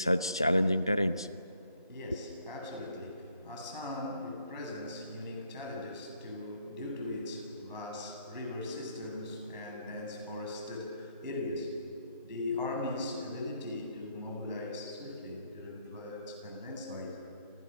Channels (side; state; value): both; inverted; correlation -0.70